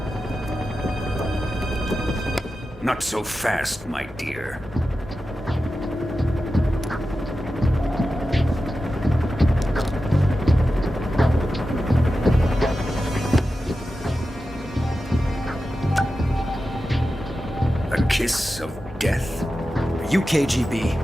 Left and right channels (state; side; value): normal; both; correlation 0.92